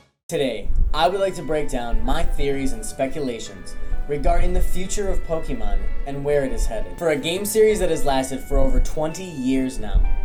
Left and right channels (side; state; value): both; identical; correlation 1.00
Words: Today, I would like to break down my theories and speculations regarding the future of Pokemon and where it is headed. For a game series that has lasted for over 20 years now,